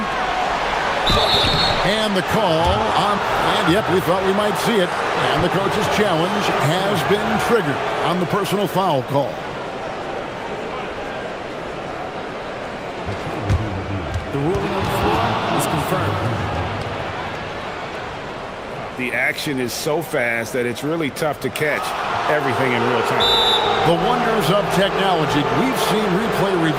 And the call on, and yep, we thought we might see it. And the coach's challenge has been triggered on the personal foul call. The ruling on the floor is confirmed. The action is so fast that it's really tough to catch everything in real time. The wonders of technology. We've seen replay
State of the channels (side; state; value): both; identical; correlation 1.00